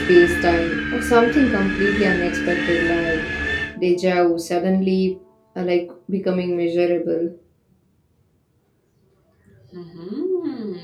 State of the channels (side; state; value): both; identical; correlation 1.00